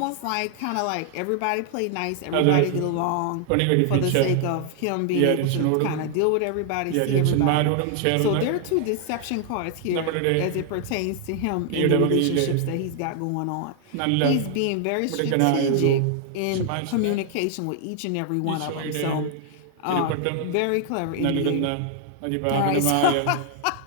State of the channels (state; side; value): different; both; correlation 0.00